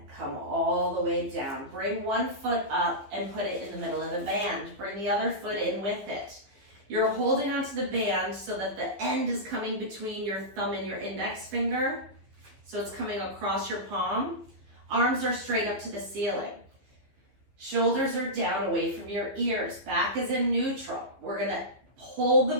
Come all the way down. Bring one foot up and put it in the middle of the band. Bring the other foot in with it. You're holding onto the band so that the end is coming between your thumb and your index finger. So it's coming across your palm. Arms are straight up to the ceiling. Shoulders are down away from your ears. Back is in neutral. We're gonna hold the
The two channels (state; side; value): late; left; 15 ms